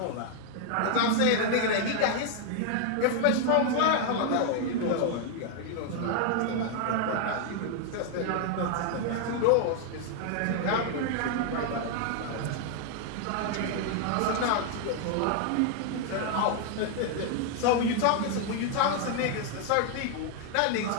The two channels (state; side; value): different; both; correlation 0.00